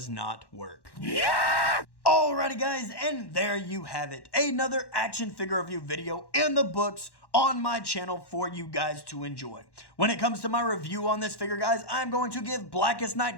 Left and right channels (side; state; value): right; late; 1.1 ms